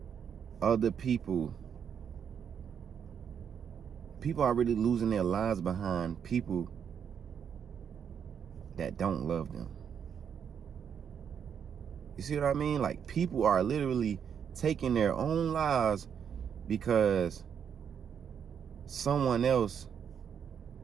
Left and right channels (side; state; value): left; quieter; 7.8 dB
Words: other people. People are really losing their lives behind people that don't love them. You see what I mean? Like, people are literally taking their own lives because someone else